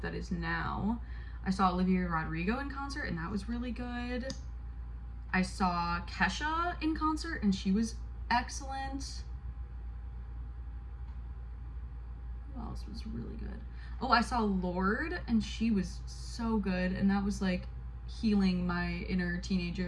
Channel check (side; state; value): both; identical; correlation 1.00